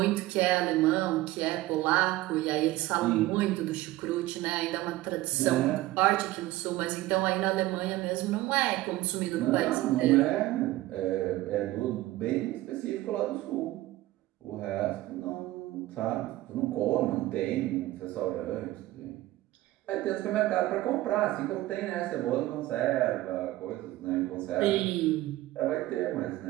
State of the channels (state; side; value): quieter; left; 16.9 dB